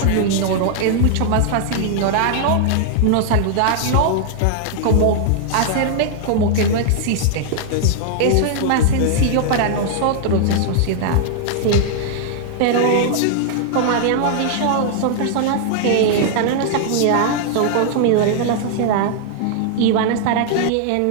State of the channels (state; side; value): different; both; correlation -0.01